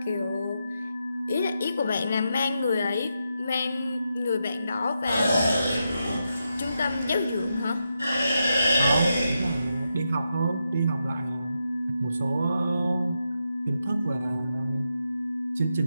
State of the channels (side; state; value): both; inverted; correlation -0.85